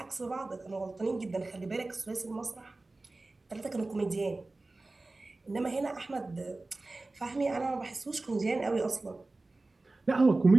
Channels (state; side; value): quieter; left; 3.2 dB